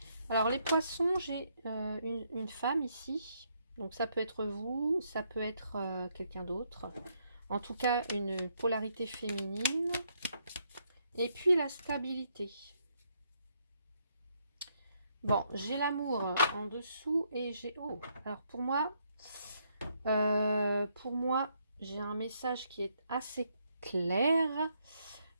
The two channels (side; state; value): both; inverted; correlation -0.74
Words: Alors, les poissons, j'ai une femme ici. Donc, ça peut être vous, ça peut être quelqu'un d'autre. En tout cas, une polarité féminine. Et puis, la stabilité. Bon, j'ai l'amour en dessous et j'ai... Oh, alors pour moi, j'ai un message qui est assez clair.